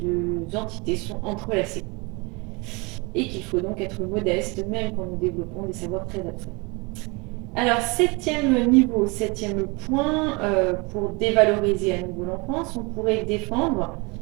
entités sont entrelacées. Et qu'il faut donc être modeste, même quand nous développons des savoirs très abstraits. Alors, 7e niveau, 7e point, pour dévaloriser à nouveau l'enfance, on pourrait défendre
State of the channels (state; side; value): quieter; left; 28.1 dB